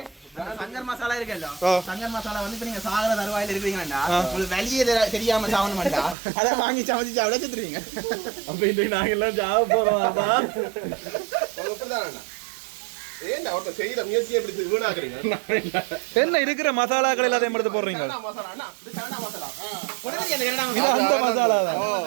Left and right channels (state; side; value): drops out; left; at 6.2 s